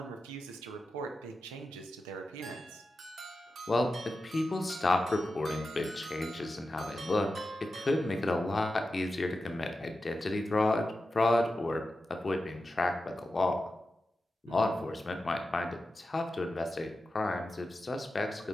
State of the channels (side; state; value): both; normal; correlation 0.92